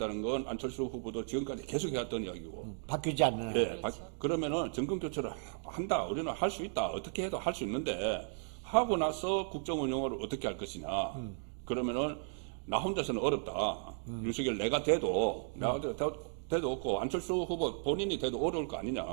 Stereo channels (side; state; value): left; silent; digital silence